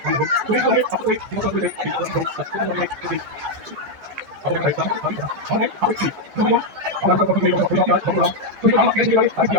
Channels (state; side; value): late; left; 14 ms